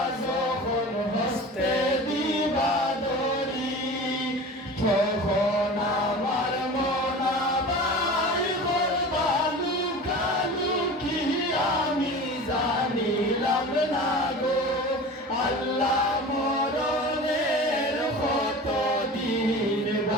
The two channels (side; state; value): both; normal; correlation 0.35